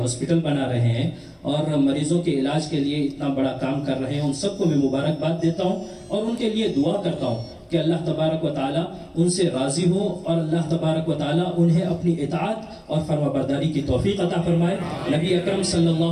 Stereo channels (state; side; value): identical; both; correlation 1.00